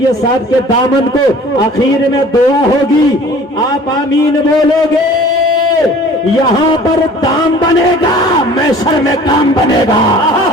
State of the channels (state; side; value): normal; both; correlation 0.48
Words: صاحب کے دامن کو، آخر میں دعا ہوگی، آپ آمین بولو گے، یہاں پر دام بنے گا، محشر میں کام بنے گا.